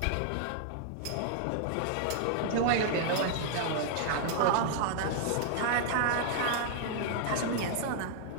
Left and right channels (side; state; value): both; different; correlation 0.00